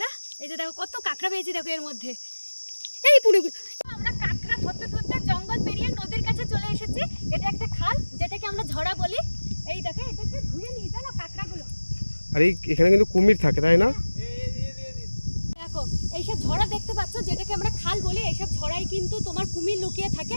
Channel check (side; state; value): both; inverted; correlation -1.00